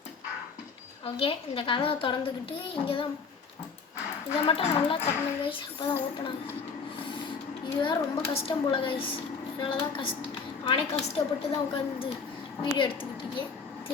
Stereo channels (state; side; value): quieter; right; 5.3 dB